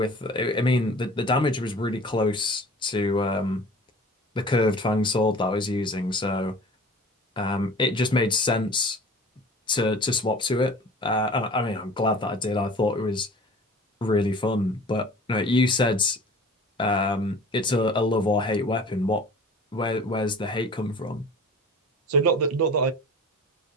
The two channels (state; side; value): normal; both; correlation 0.43